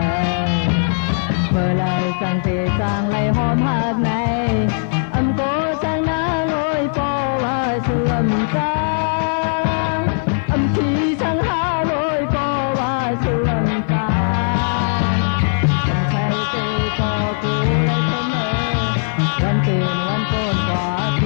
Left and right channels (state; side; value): silent; right; 55 dB below the other